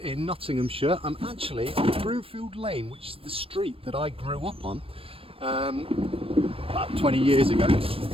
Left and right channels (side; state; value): left; late; 0.27 ms